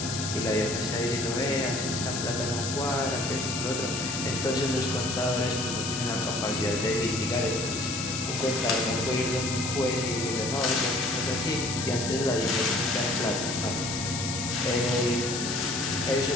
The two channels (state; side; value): noise; left; hiss, 4 dB below the sound